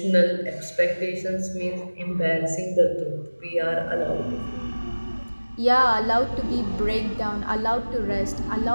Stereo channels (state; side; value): inverted; both; correlation -1.00